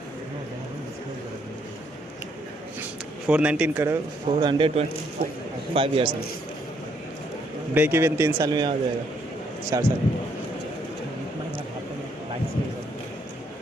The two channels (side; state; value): both; normal; correlation 0.71